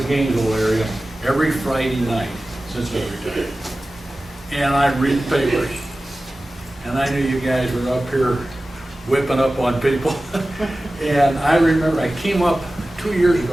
Gainesville area, every Friday night since I retired. And I read the papers. And I knew you guys were up here whipping up on people. And I remember I came up 3 years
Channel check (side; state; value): both; normal; correlation 0.96